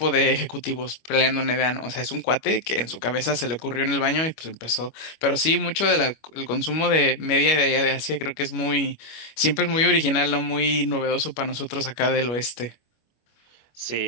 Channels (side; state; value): right; late; 25 ms